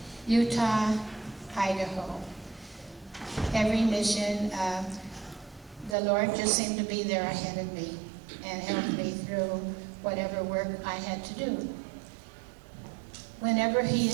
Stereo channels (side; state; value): left; drops out; at 6.0 s